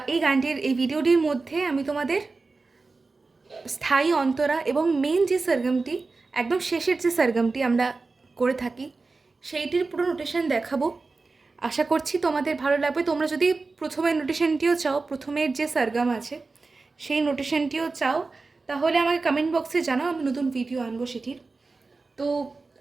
এই গানটির এই ভিডিওটির মধ্যে আমি তোমাদের স্থায়ী অন্তরা এবং মেন যে সরগমটি, একদম শেষের যে সরগমটি আমরা করে থাকি, সেইটির পুরো নোটেশন দেখাবো। আশা করছি তোমাদের ভালো লাগবে। তোমরা যদি প্রথমের নোটেশনটিও চাও, প্রথমের যে সরগম আছে সেই নোটেশনটিও চাও, তাহলে আমাকে কমেন্ট বক্সে জানাও, আমি নতুন ভিডিও আনবো সেটির। তো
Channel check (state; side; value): quieter; left; 3.9 dB